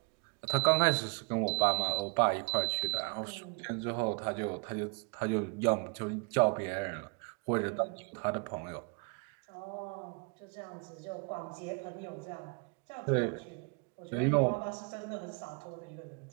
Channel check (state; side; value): quieter; left; 34.6 dB